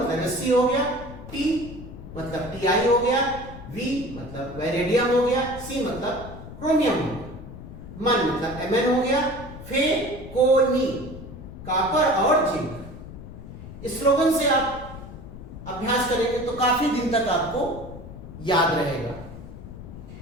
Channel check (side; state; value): left; noise; rumble, 13 dB below the sound